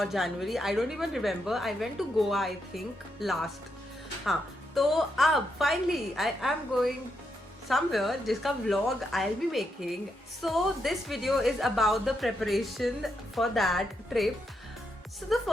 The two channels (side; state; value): both; normal; correlation 0.81